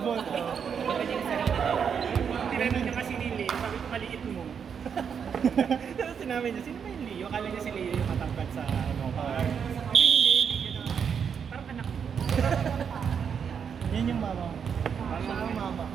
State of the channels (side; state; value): left; quieter; 7.1 dB